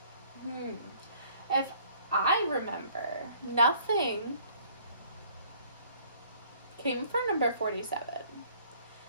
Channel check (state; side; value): inverted; both; correlation -0.58